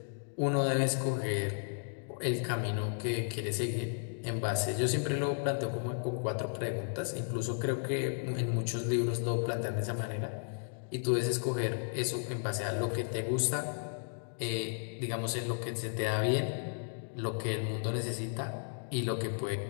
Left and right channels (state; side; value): silent; right; digital silence